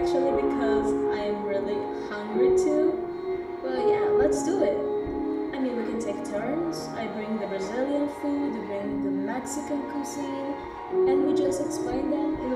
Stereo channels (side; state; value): both; identical; correlation 1.00